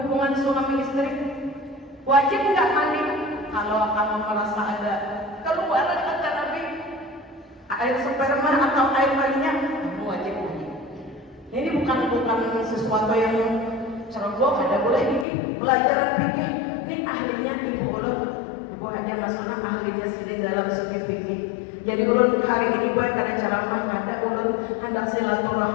suami istri. Wajib nggak mandi? Kalau kamu merasa ada keluaran kata Nabi, air sperma atau air maninya, kamu wajib mandi. Ini bukan sesuatu yang ceroboh, ada boleh ini pelajaran fikih. Ini ahlinya ibu ulun, ibu Haja Masuna, ahlinya sini dalam segi fikih. Jadi ulun hari ini gue karena ceramah ada ulun hendak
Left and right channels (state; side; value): drops out; right; at 15.2 s